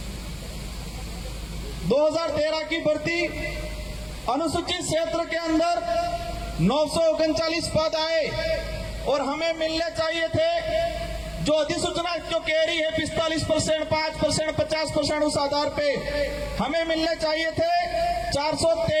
2013 की भर्ती अनुसूचित क्षेत्र के अंदर 939 पद आए, और हमें मिलने चाहिए थे जो अधिसूचना जो कह रही है 45%, 5%, 50% उस आधार पे हमें मिलने चाहिए थे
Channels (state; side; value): identical; both; correlation 1.00